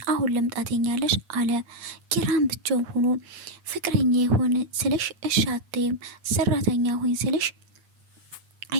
አሁን ልምጣተኛለሽ አለ። ኪራን ብቻው ሆኖ ፍቅረኛ የሆነ ስልሽ እሺ አትይም፣ ሰራተኛ ሆኝ ስልሽ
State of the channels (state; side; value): late; left; 8.8 ms